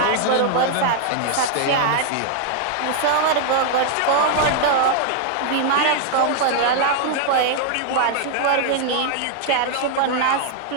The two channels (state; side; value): different; both; correlation 0.00